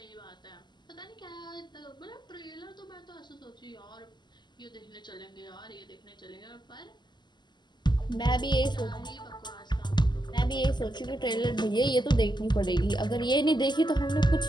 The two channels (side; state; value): right; late; 0.21 ms